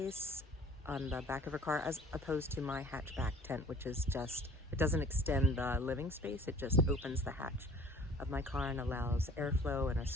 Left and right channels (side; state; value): both; normal; correlation 0.50